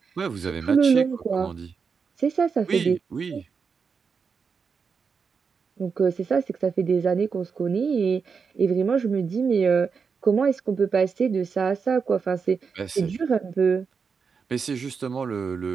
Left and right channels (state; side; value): quieter; left; 5.6 dB